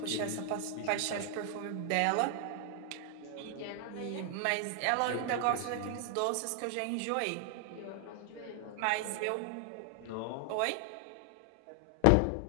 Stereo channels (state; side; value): different; both; correlation 0.00